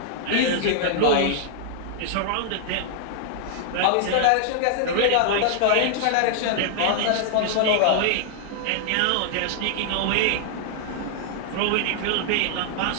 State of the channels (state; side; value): different; both; correlation -0.01